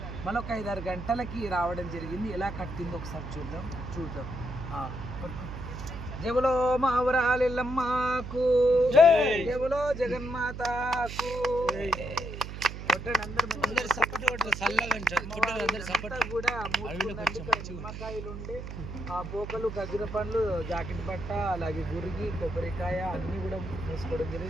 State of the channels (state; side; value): noise; right; hum, 8 dB below the sound